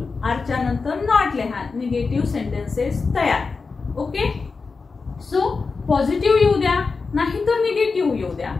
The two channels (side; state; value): right; quieter; 4.5 dB